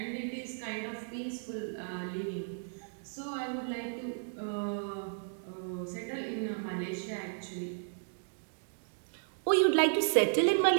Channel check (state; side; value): silent; left; digital silence